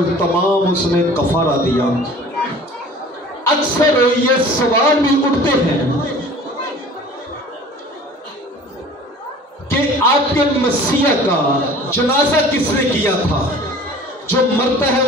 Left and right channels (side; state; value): both; normal; correlation 0.45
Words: تمام اس نے کفارہ دیا۔ اکثر یہ سوال بھی اٹھتے ہیں کہ آپ کے مسیح کا جنازہ کس نے کیا تھا؟ جو مرتا ہے